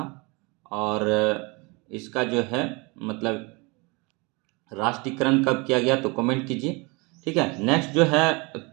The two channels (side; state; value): left; quieter; 27.9 dB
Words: और इसका जो है मतलब राष्ट्रीयकरण कब किया गया? तो कमेंट कीजिए। ठीक है। नेक्स्ट जो है